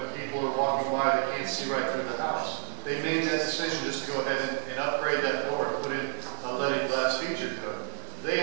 people are walking by, they can't see right through the house. They made that decision just to go ahead and upgrade that door and put in a leaded glass feature to it. They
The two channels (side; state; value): left; silent; digital silence